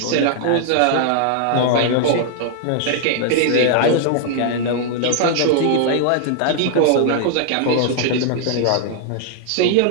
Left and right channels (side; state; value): both; different; correlation 0.00